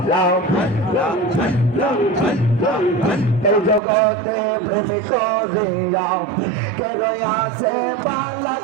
এই জগতে প্রেম করিয়া কেন আসে পালা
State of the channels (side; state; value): left; drops out; at 3.8 s